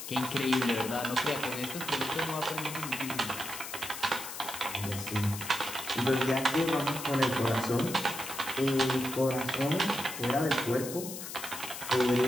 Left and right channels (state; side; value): noise; left; hiss, 9 dB below the sound